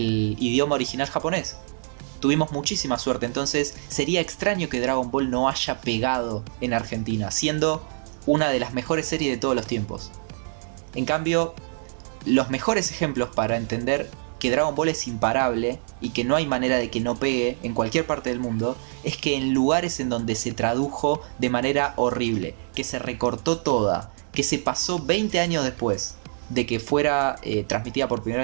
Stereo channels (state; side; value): silent; left; digital silence